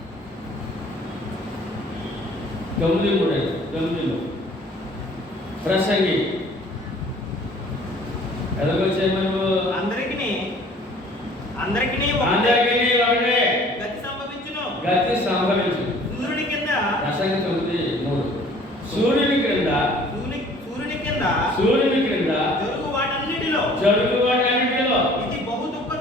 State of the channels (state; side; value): normal; both; correlation 0.53